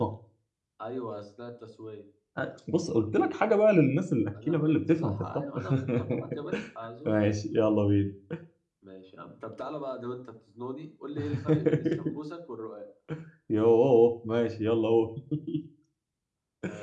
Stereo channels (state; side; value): identical; both; correlation 1.00